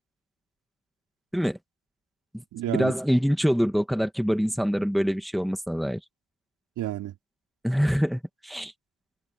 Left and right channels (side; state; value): both; normal; correlation 0.96